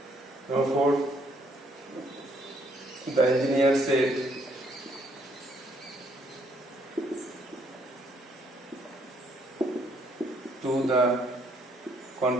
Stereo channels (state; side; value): normal; both; correlation 0.68